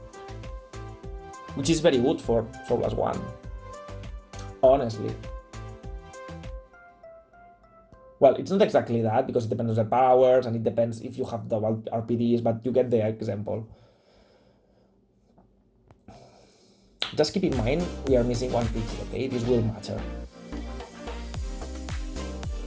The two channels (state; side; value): identical; both; correlation 1.00